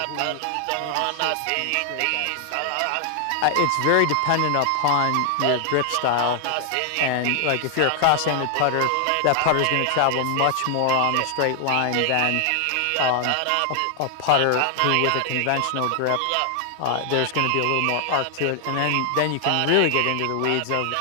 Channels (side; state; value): both; different; correlation 0.00